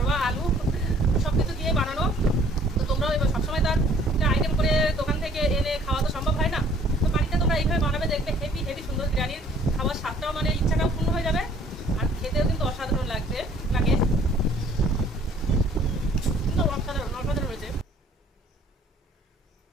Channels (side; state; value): both; normal; correlation 0.57